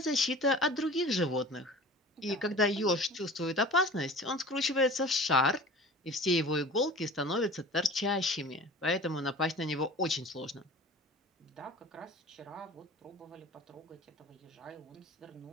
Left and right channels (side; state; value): both; normal; correlation 0.41